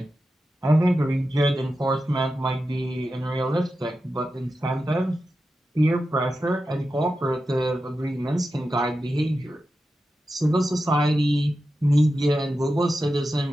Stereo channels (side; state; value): both; normal; correlation 0.91